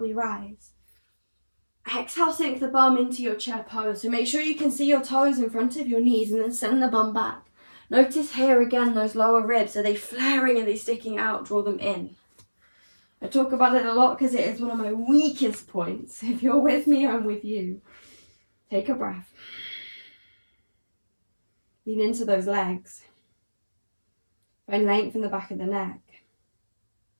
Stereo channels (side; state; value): both; inverted; correlation -1.00